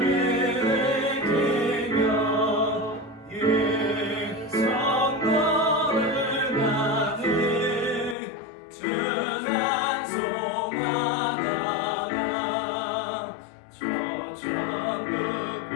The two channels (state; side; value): drops out; right; at 8.2 s